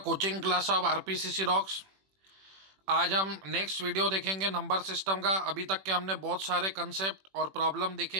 coaching class of RPCC rocks. आज हम next video देखेंगे number system का। अभी तक के हमने बहुत सारे कंसेप्ट और प्रॉब्लम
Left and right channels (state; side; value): late; left; 21 ms